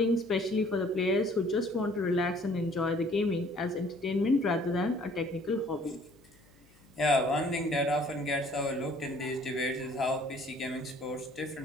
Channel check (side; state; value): left; noise; hum, 29 dB below the sound